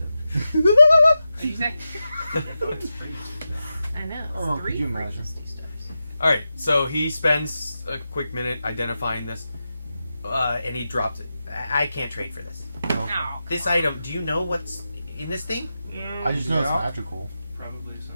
What'd you say? It's free. I know. It's Oh, 3 could you free imagine? misty stuffs. Alright, so he spends a quick minute identifying this, and he drops it. I can't trade for this. Okay. No. This item, do you know what's in this thing? I just know it's Yeah. magical. Probably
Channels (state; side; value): inverted; both; correlation -0.91